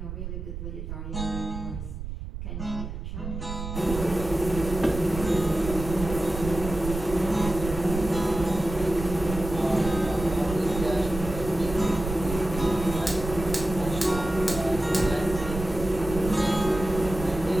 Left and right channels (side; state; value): right; noise; rumble, 7 dB below the sound